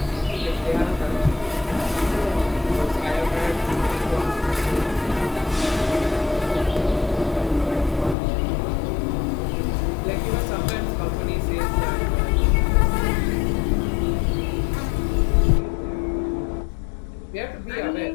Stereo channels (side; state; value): right; drops out; at 8.2 s